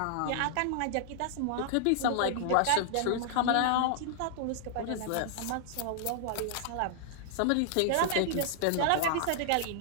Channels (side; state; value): both; different; correlation -0.01